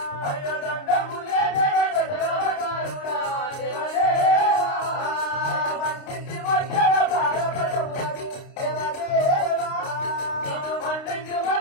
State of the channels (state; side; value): late; right; 29 ms